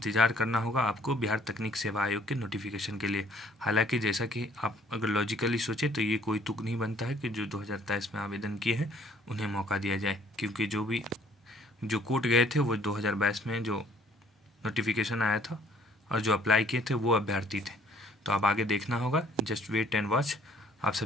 करना होगा आपको बिहार तकनीक सेवा आयोग के नोटिफिकेशन के लिए। हालांकि जैसा कि आप अगर लॉजिकली सोचें तो ये कोई तुक नहीं बनता है कि जो 2023 में आवेदन किए हैं उन्हें मौका दिया जाए, क्योंकि जो कोर्ट गए थे वो 2022 में जो नोटिफिकेशन आया था और जो अप्लाई किए थे वो अभ्यर्थी थे। तो अब आगे देखना होगा, जस्ट वेट एंड वॉच। आप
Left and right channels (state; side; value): normal; both; correlation 0.59